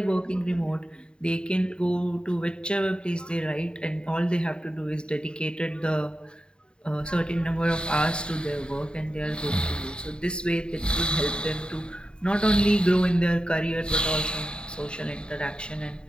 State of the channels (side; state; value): right; late; 0.050 ms